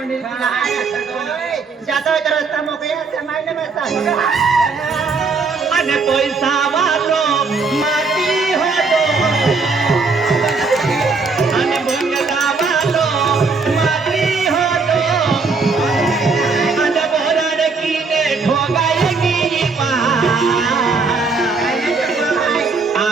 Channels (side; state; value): left; quieter; 4.3 dB